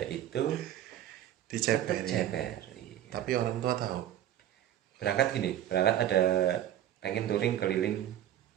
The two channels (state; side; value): quieter; left; 11.7 dB